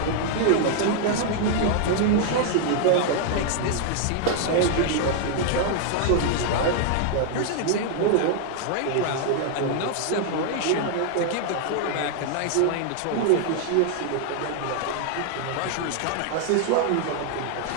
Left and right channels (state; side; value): different; both; correlation 0.00